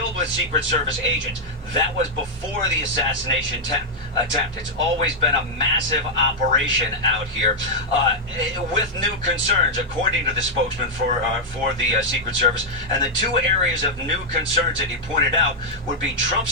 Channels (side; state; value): both; normal; correlation -0.03